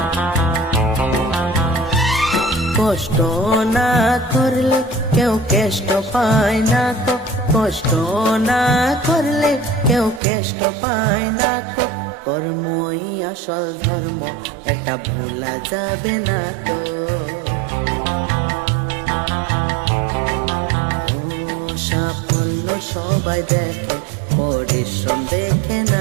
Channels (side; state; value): left; drops out; at 10.2 s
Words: কষ্ট না করলে কেউ কেষ্ট পায় না তো। কষ্ট না করলে কেউ কেষ্ট পায় না তো। কর্মই আসল ধর্ম, এটা ভোলা যাবে না তো। সাফল্য সবাই দেখে, পরিশ্রম দেখে